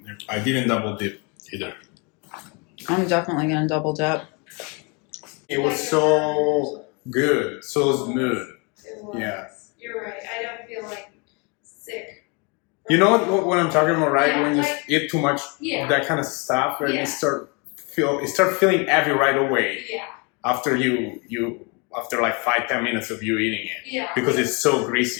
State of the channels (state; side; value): quieter; right; 31.8 dB